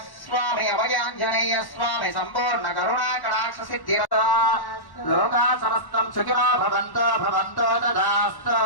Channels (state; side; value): late; right; 1.1 ms